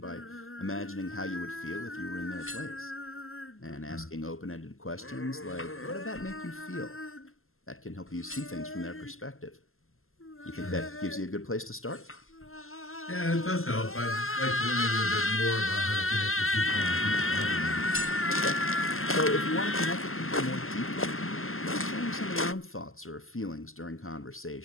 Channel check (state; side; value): late; right; 0.62 ms